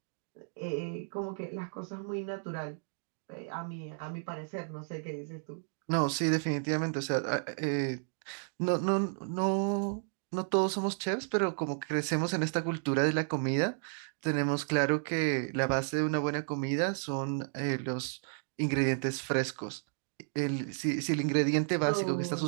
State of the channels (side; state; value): left; silent; 56 dB below the other